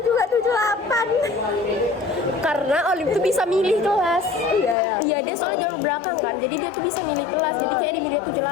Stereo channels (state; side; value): drops out; right; at 4.8 s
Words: juga 78. Karena Olive tuh bisa milih kelas. Iya, dia soalnya jalur belakang kan, jadi dia tuh bisa milih kelas. Jadi kayak di milih